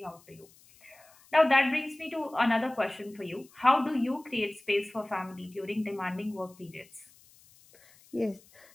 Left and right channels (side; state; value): left; noise; hiss, 27 dB below the sound